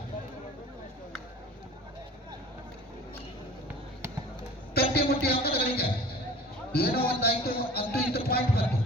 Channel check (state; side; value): normal; both; correlation 0.43